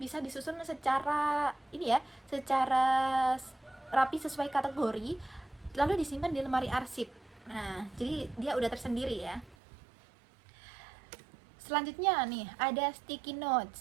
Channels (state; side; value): drops out; left; at 9.6 s